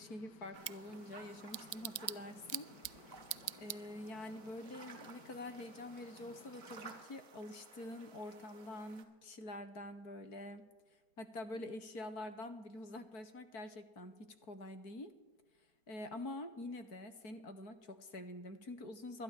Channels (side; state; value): right; late; 4.4 ms